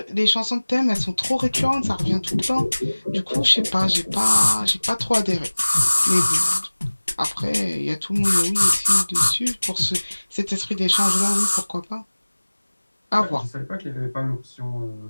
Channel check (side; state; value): both; inverted; correlation -1.00